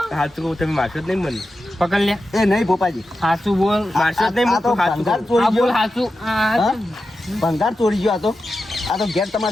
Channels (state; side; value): normal; both; correlation 0.91